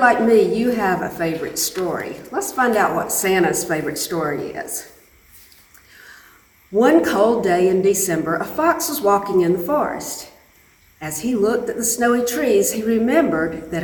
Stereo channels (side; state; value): both; identical; correlation 1.00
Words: like me, you have a favorite story. Let's find out what Santa's favorite story is. One cold day in December, a fox was walking in the forest. As he looked at the snowy trees, he remembered that